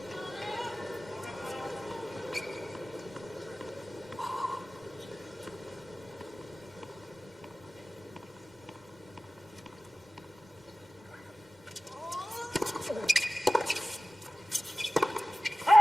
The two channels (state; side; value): normal; both; correlation 0.96